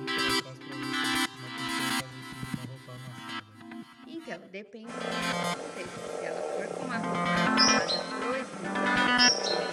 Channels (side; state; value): both; identical; correlation 1.00